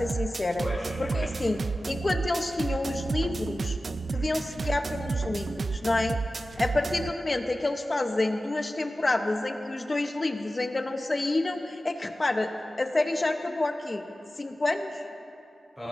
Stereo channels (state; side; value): normal; both; correlation 0.94